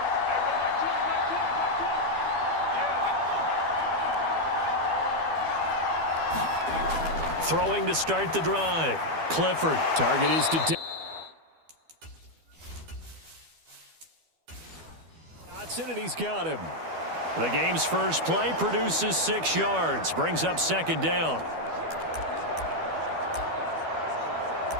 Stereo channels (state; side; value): late; left; 12 ms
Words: Throwing to start the drive. Clifford. Target is to Dotson, and he's got him. The game's first play produces 6 yards. Brings up 2nd down.